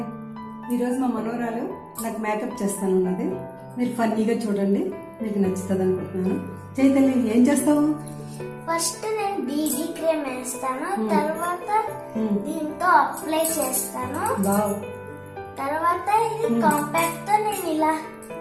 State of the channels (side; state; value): both; identical; correlation 1.00